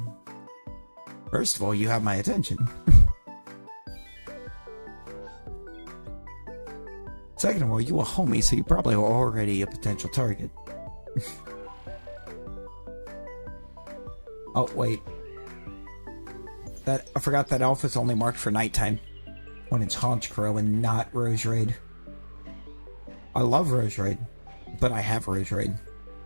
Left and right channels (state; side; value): inverted; both; correlation -1.00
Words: first of all, you have my attention. Second of all, you a homie, so you probably are already a potential target. Oh, wait. I forgot that alpha's only marked for nighttime. When it's Honchkrow and not Rose Raid. I love Rose Raid, but I have Rose Raid.